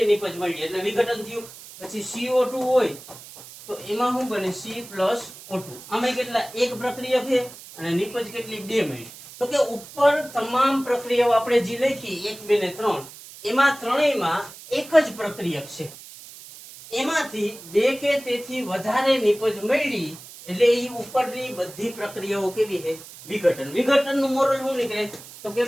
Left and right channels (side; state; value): right; noise; hiss, 17 dB below the sound